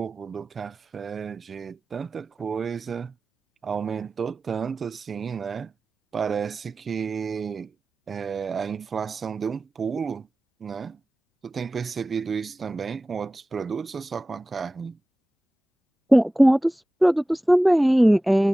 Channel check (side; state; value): both; normal; correlation 0.97